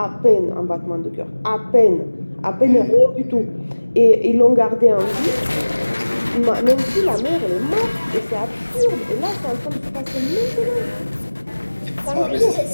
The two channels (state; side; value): inverted; both; correlation -1.00